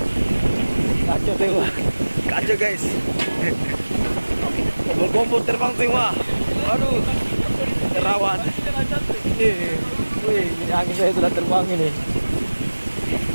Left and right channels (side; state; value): both; inverted; correlation -1.00